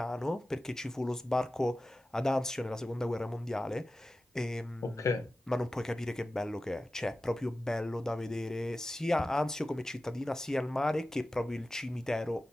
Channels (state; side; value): normal; both; correlation 0.95